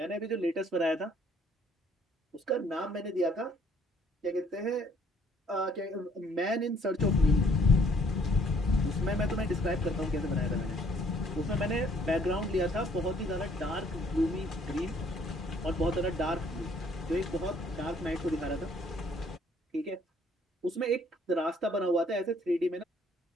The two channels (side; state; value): both; normal; correlation 0.62